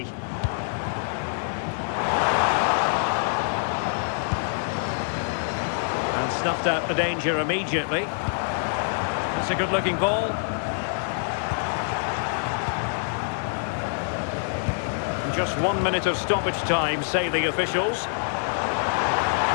And snuffed out the danger immediately. That's a good-looking ball. Just 1 minute of stoppage time, say the officials.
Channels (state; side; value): silent; right; 61 dB below the other